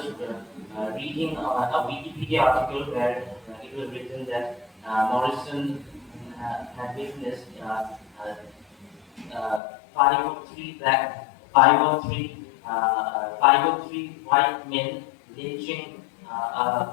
reading a Wikipedia article where it was written that Morrison had witnessed 503 white men lynching a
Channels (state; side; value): drops out; right; at 9.6 s